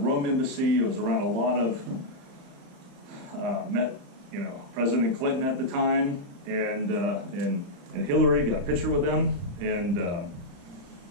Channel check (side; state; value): left; late; 35 ms